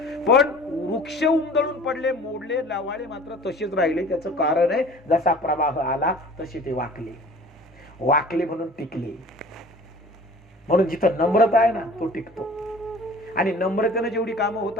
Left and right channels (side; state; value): both; normal; correlation 0.46